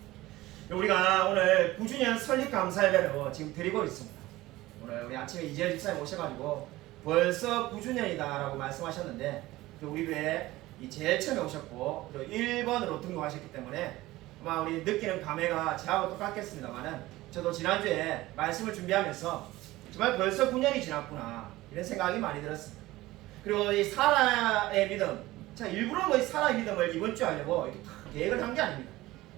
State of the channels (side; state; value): left; quieter; 17.8 dB